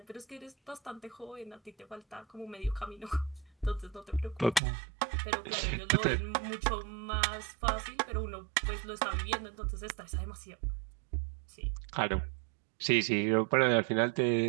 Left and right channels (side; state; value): left; drops out; at 4.6 s